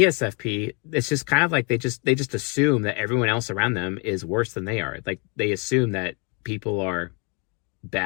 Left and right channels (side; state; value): right; quieter; 33.6 dB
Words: it's just kind of like they just assume that everyone else around them is worse than they are. Like they assume that people are